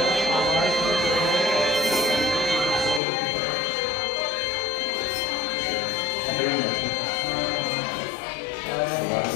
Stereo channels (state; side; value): drops out; right; at 3.0 s